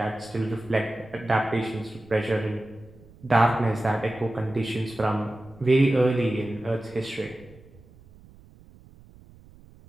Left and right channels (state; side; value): noise; right; rumble, 24 dB below the sound